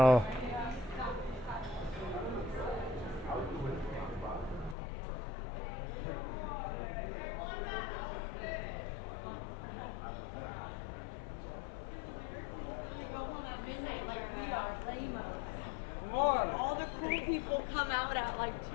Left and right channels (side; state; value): right; drops out; at 4.8 s